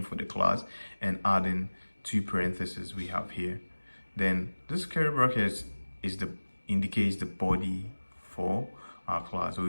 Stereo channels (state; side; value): inverted; both; correlation -1.00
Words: for the class and adding two parentheses we have here. Then this curly bracket indicates the body for our class. So